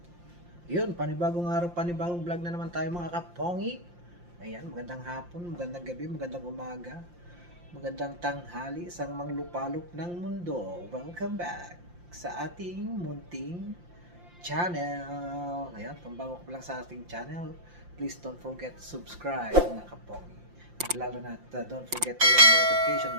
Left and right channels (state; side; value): late; left; 5.7 ms